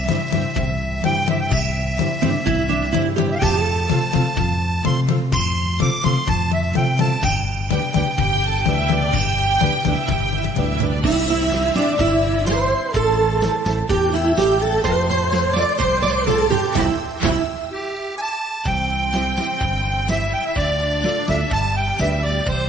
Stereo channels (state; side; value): normal; both; correlation 0.67